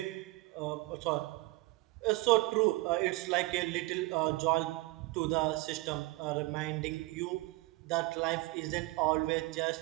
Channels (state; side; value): quieter; left; 21.9 dB